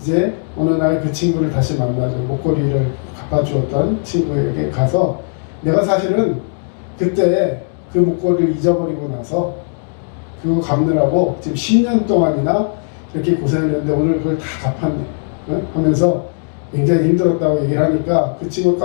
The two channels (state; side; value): silent; right; digital silence